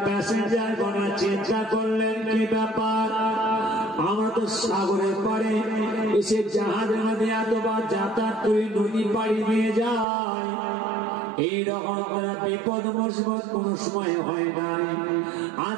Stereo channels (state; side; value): drops out; left; at 10.1 s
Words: প্যাসেঞ্জার গণেরা চিন্তা করলেন, কি ব্যাপার, আমরা তো সাগরের পারে এসে জাহাজের মধ্যে এতবার যাতায়াত করে নদী পাড়ি দিয়ে যায়, এইরকম আপনারা বিপদ মুসিবত কোন সময় হয় নাই,